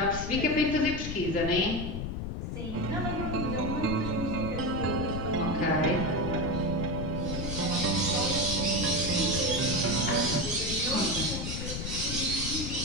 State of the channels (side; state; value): left; noise; rumble, 4 dB below the sound